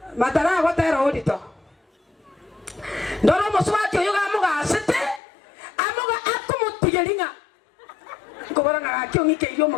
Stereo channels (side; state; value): right; drops out; at 5.2 s